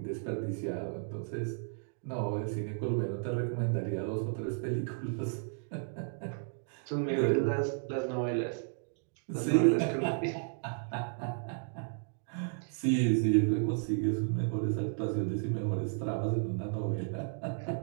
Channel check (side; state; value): left; silent; digital silence